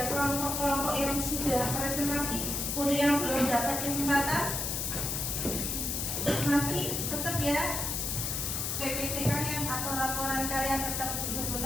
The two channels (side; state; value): left; noise; hiss, 1 dB below the sound